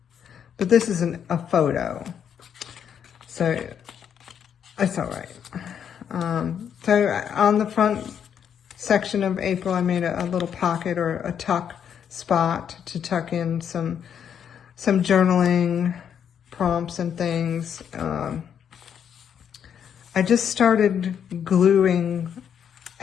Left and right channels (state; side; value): quieter; right; 8.3 dB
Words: but this is a photo, so it's all right. So on the front section of April, I made a little pocket or a tuck spot to tuck in some journaling prompts and things. I just started gluing